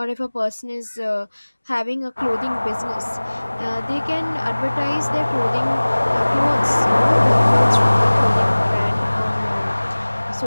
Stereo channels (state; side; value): inverted; both; correlation -1.00